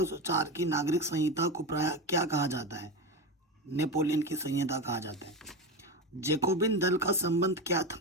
की नागरिक संहिता को प्रायः क्या कहा जाता है, नेपोलियन की संहिता कहा जाता है। जैकोबिन दल का संबंध क्या था,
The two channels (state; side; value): normal; both; correlation 0.20